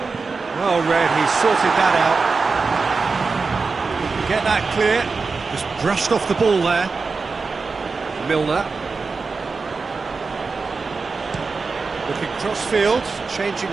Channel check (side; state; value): left; quieter; 4.4 dB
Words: Well read, he sorted that out. Get that clear. Just brushed off the ball there. Milner. Looking cross-field, changing